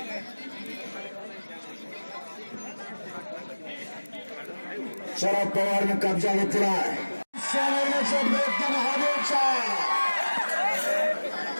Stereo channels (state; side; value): inverted; both; correlation -1.00